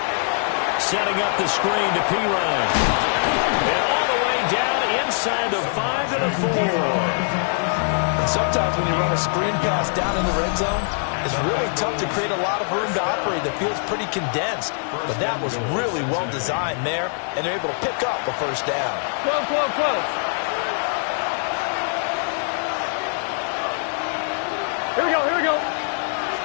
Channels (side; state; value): right; silent; 62 dB below the other